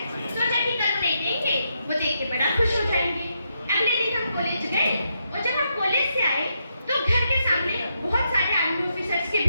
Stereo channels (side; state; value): both; inverted; correlation -0.81